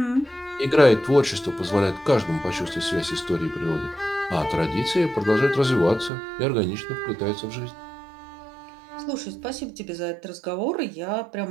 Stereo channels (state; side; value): drops out; left; at 6.1 s